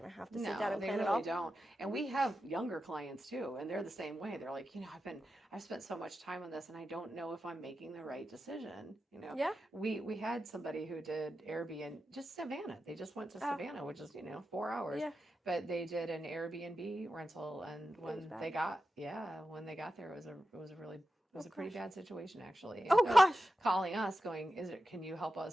to have to sit down and they plan it really all. don't. And we have younger clients too, and they're the same way. They're like, I've spent so much time on this, and I don't know if I'm making the right decision. Yeah. We had somebody who did Airbnb, just Savannah. They just went to Savannah, which is 4 hours. Yeah. But they did an Airbnb rental, and was when bad. they got there, it was a pretty bad situation, actually. And Oh so gosh. calling us going, can you help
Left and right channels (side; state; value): both; normal; correlation 0.91